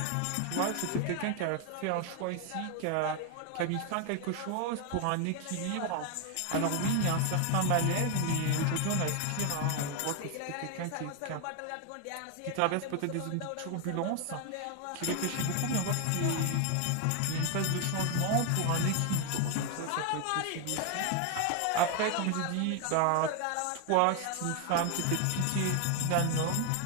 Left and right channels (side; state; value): both; different; correlation 0.01